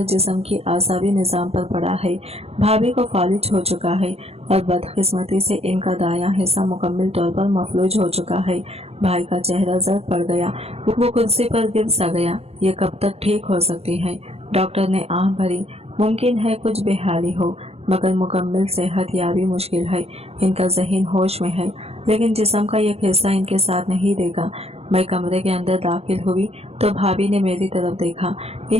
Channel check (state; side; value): late; left; 0.29 ms